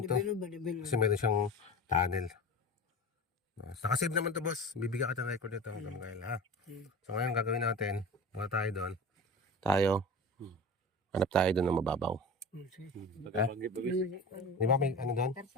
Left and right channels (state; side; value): normal; both; correlation 0.32